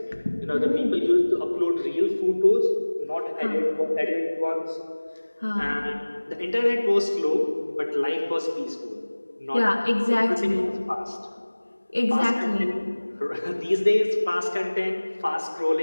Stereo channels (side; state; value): both; inverted; correlation -1.00